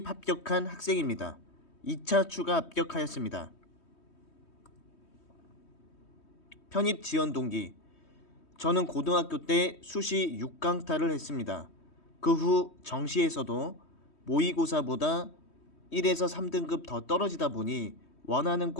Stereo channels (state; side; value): late; right; 3.2 ms